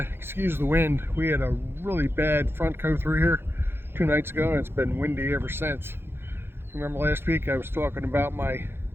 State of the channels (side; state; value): left; late; 0.11 ms